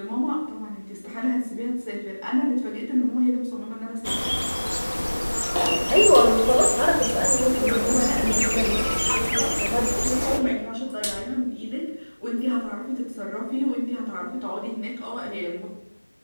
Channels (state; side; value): inverted; both; correlation -1.00